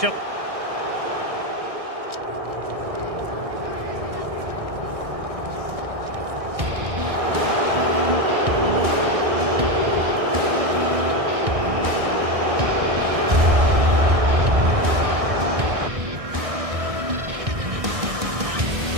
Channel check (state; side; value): late; left; 1.6 ms